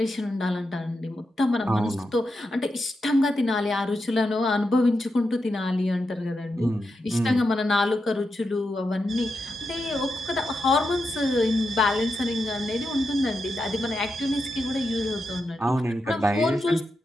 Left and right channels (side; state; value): both; normal; correlation 0.87